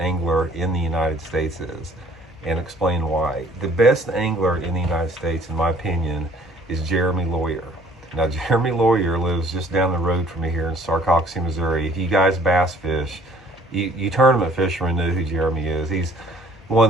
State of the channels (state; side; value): normal; both; correlation 0.57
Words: in the United States is, and explain why. The best angler in the United States, in my opinion, is Jeremy Lawyer. Now, Jeremy Lawyer lives just down the road from me here in Sarcoxie, Missouri. If you guys bass fish, you tournament fishermen know who Jeremy is. He's